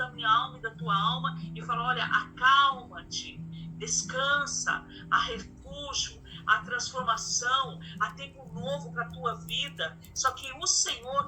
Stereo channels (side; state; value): both; identical; correlation 1.00